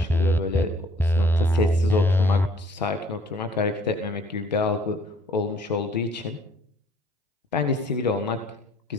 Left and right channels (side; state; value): both; normal; correlation 0.58